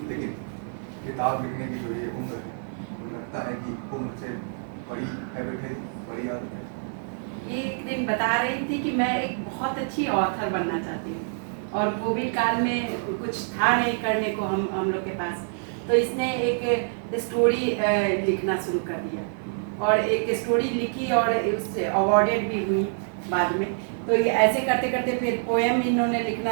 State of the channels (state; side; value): silent; left; 61 dB below the other